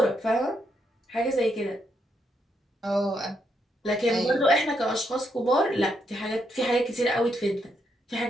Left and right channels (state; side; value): normal; both; correlation 0.78